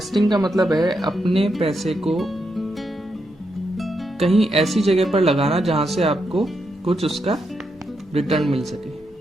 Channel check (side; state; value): both; normal; correlation 0.82